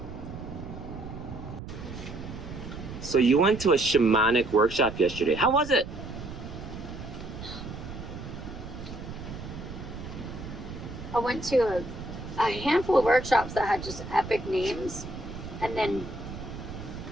So you went to a shamanic workshop yesterday. How was it? I went to a handful of workshops that had just epic names, and then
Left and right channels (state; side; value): noise; right; rumble, 10 dB below the sound